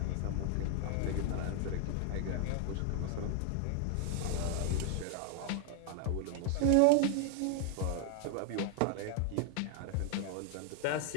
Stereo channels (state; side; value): different; both; correlation 0.00